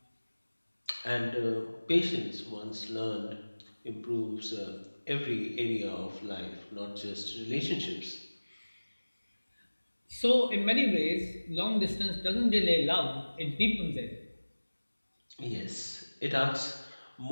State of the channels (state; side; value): inverted; both; correlation -1.00